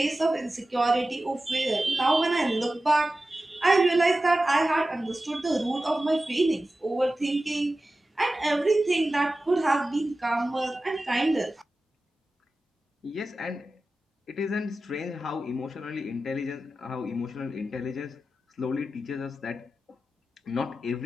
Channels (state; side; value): normal; both; correlation 0.94